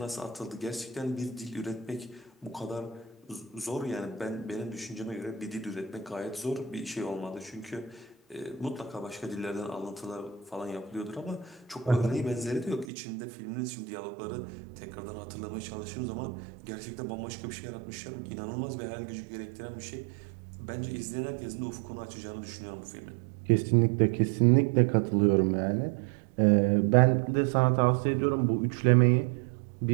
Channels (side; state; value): left; drops out; at 12.9 s